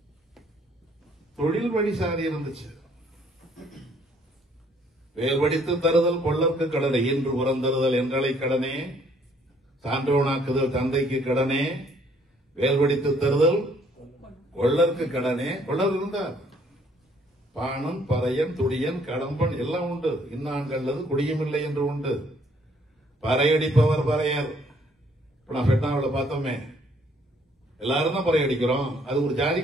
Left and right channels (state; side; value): normal; both; correlation 0.64